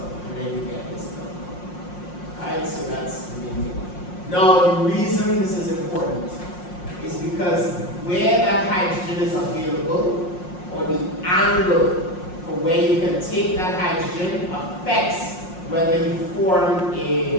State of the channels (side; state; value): right; late; 5.6 ms